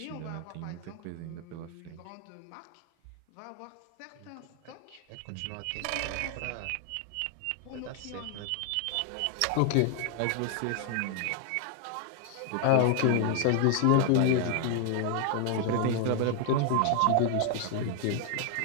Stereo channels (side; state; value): both; different; correlation 0.00